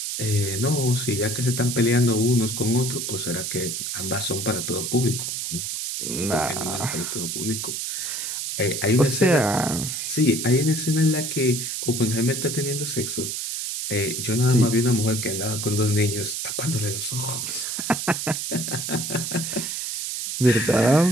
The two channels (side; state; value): right; noise; hiss, 3 dB below the sound